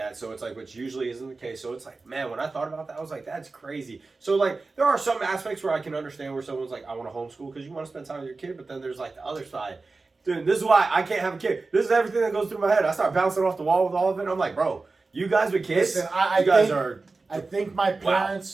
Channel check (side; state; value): left; quieter; 3.8 dB